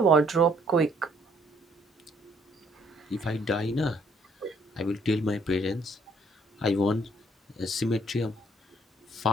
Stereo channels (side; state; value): both; normal; correlation 0.64